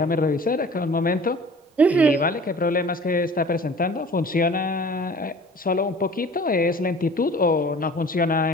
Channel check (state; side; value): normal; both; correlation 0.45